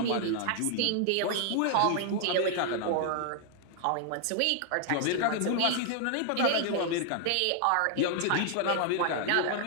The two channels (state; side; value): different; both; correlation 0.00